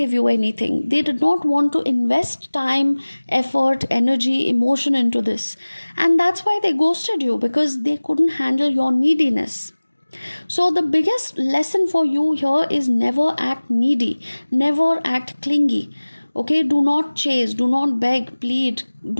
you anything. They did not want to invest time, effort, energy, emotion into this, and that's why they ghosted you, because they couldn't handle your neediness. So, the biggest lesson for you here is never act needy, never act clingy. Okay, do not chase, do not beg, plead,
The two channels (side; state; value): both; inverted; correlation -1.00